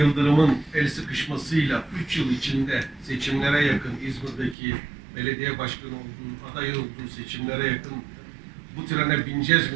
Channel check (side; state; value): left; drops out; at 4.5 s